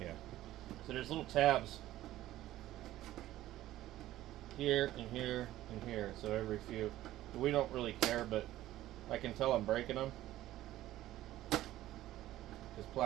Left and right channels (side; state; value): left; quieter; 14.6 dB